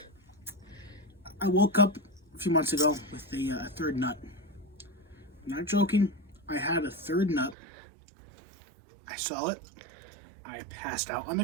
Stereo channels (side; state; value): left; drops out; at 7.6 s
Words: I woke up a few months ago with a third nut. I'm not joking. I had a third nut. I saw it. I passed out on